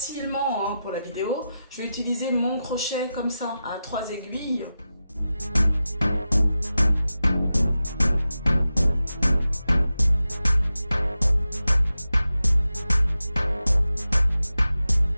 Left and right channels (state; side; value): inverted; both; correlation -0.92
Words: hein, pour la vidéo, je vais utiliser mon crochet comme ça à 3 aiguilles.